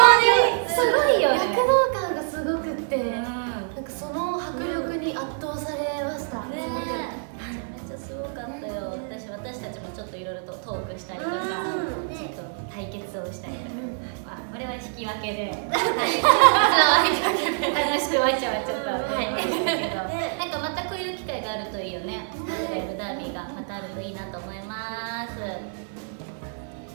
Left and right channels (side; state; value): left; silent; digital silence